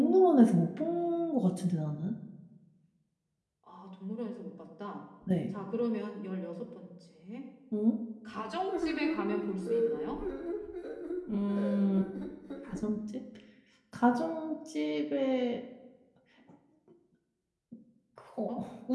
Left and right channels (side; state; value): both; identical; correlation 1.00